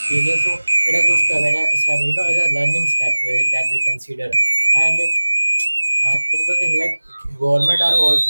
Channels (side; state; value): both; inverted; correlation -1.00